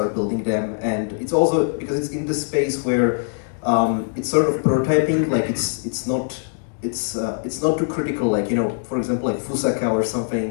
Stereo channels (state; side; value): silent; right; digital silence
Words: building them. And it's also because it's in the space where it's sort of prototyping, like it's not too critical, like, you know, for example, like Fusaka or